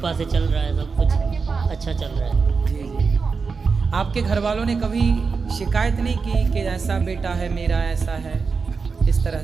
से चल रहा है, सब कुछ अच्छा चल रहा है। जी जी। आपके घर वालों ने कभी शिकायत नहीं की कि ऐसा बेटा है मेरा, ऐसा है, इस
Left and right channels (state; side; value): quieter; left; 4.9 dB